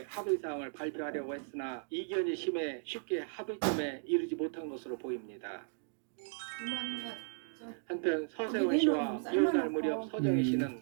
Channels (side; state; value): left; silent; digital silence